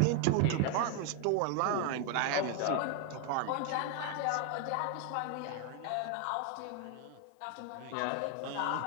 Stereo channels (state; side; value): different; both; correlation 0.01